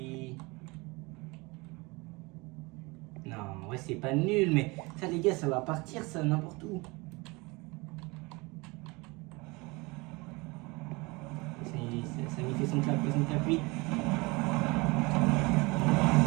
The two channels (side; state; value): left; quieter; 25.3 dB